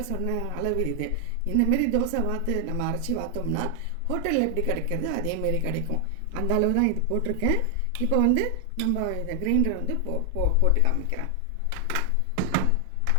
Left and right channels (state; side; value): different; both; correlation 0.00